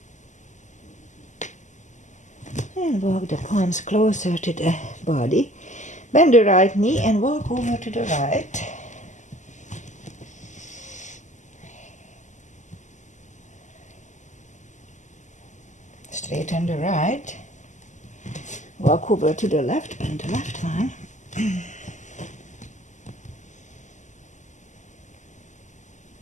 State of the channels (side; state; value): right; late; 0.35 ms